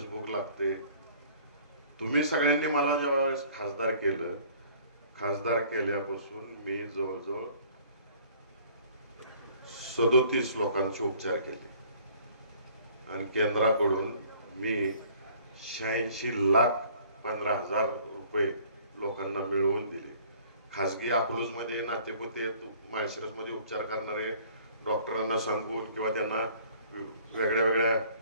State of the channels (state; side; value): inverted; both; correlation -0.54